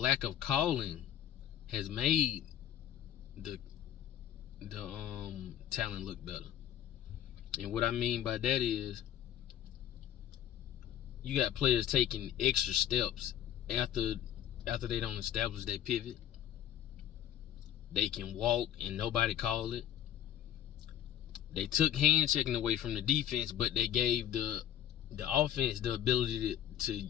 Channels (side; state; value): right; quieter; 11.0 dB